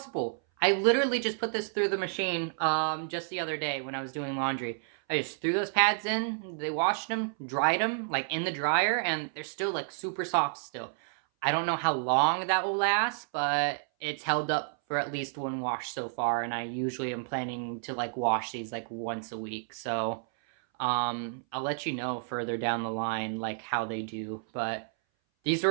I literally just put this through the machine just the other day when I was doing laundry. I just threw those pads in, they washed them, dried them, like, in the dryer, and they're still, like, super soft still. I don't know how long that will last, but it's held up for at least one wash so far, and I usually am planning to, like, wash these, like, once a week, so, I'll let you know further down the line, like, how they do, but these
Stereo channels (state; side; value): silent; left; 58 dB below the other